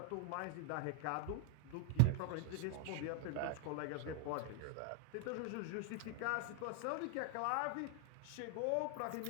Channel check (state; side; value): different; both; correlation 0.00